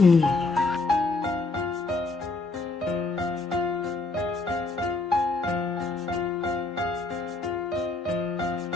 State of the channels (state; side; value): quieter; right; 3.5 dB